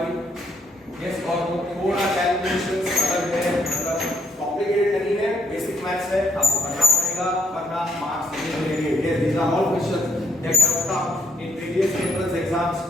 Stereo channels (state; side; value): normal; both; correlation 0.72